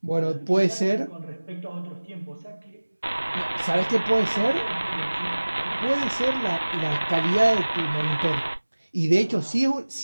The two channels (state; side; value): inverted; both; correlation -1.00